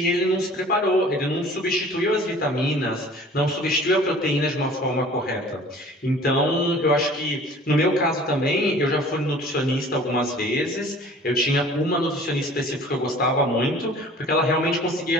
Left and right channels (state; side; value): normal; both; correlation 0.48